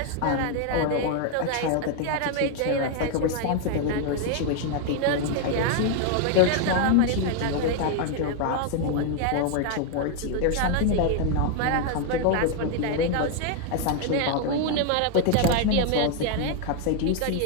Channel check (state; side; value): different; both; correlation 0.00